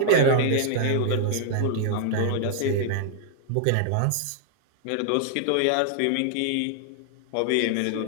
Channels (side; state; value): both; different; correlation -0.01